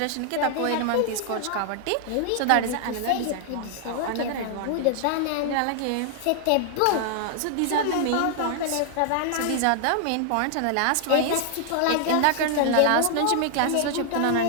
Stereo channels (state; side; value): different; both; correlation 0.00